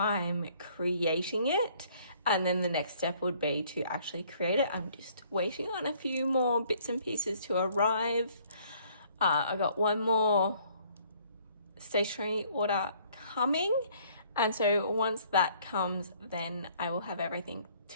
creating it. And then the next step would be to actually create it. I'm just waiting on a few more bits and pieces to arrive. I got one more stationery order coming. And so once that comes, then I will have everything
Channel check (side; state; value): both; inverted; correlation -0.61